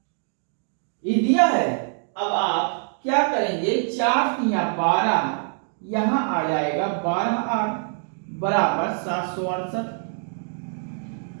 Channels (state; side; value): silent; left; 55 dB below the other